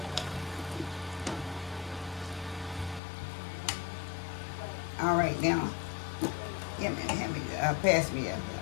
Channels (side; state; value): right; drops out; at 3.0 s